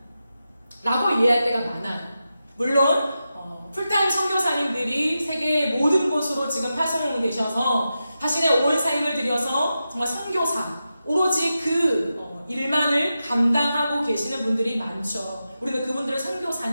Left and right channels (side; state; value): both; inverted; correlation -0.90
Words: 라고 이해할 때가 많아요. 물론 풀타임 선교사님들이 세계의 모든 곳으로 지금 파송되셔서 자신의 온 삶을 들여서 정말 선교사, 오로지 그 일만을 감당하고 계시는 분들이 많죠. 우리는 그분들을